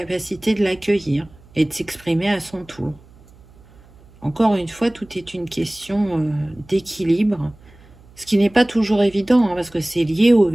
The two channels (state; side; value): noise; right; hum, 26 dB below the sound